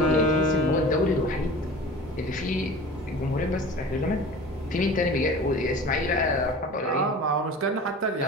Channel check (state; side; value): normal; both; correlation 0.38